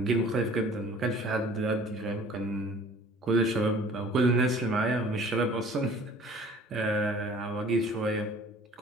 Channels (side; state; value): both; normal; correlation 0.50